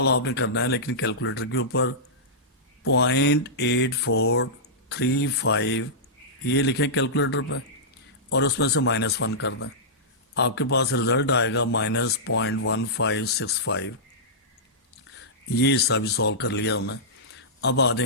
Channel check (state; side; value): normal; both; correlation -0.15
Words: آپ نے کرنا ہے لیکن کیلکولیٹر کے اوپر 0.8435 یہ لکھیں کیلکولیٹر پہ, اور اس میں سے -1 کر دیں. آپ کے پاس رزلٹ آئے گا -0.1565. یہ حصہ بھی سولو کر لیا ہم نے. اب آ